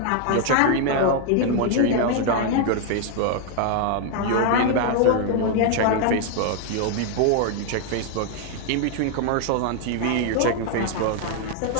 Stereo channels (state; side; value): different; both; correlation 0.00